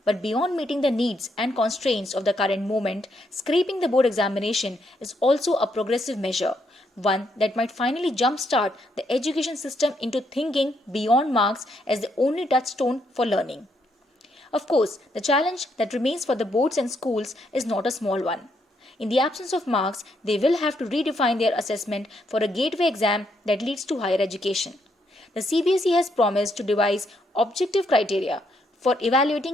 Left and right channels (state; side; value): normal; both; correlation 0.75